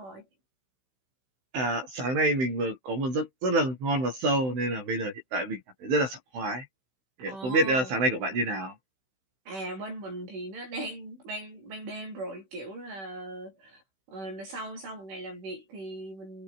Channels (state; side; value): late; left; 16 ms